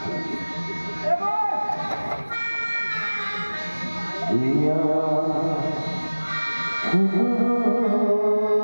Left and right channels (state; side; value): inverted; both; correlation -1.00